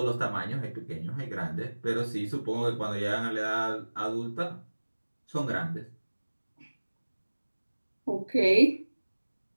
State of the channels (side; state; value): both; inverted; correlation -1.00